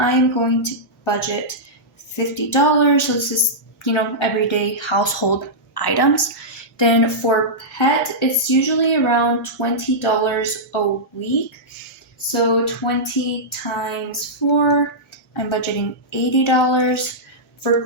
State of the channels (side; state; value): both; normal; correlation -0.12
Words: going to budget $50. So this is, everyday household items. Then for pet, it's usually around $20 a week. So 20 times 4, I'm budgeting $80. For